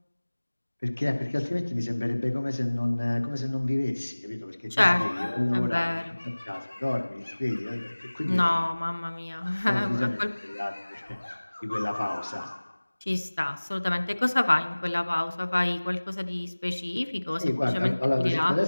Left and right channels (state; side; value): inverted; both; correlation -1.00